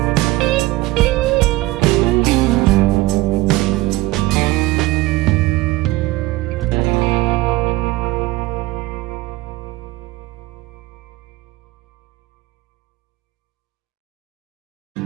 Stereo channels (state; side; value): quieter; left; 18.8 dB